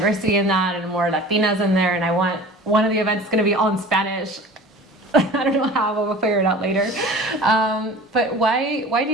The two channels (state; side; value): normal; both; correlation 0.41